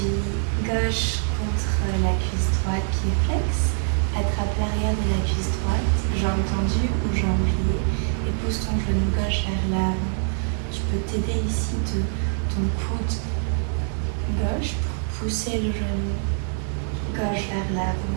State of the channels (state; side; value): silent; left; 56 dB below the other